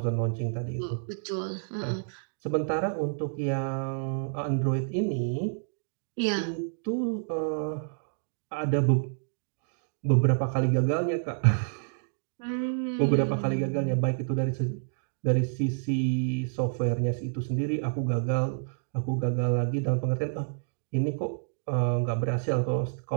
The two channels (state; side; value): silent; left; digital silence